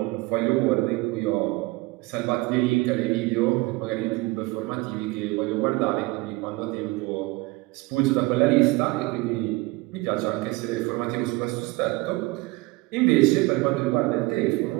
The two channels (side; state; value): left; quieter; 22.7 dB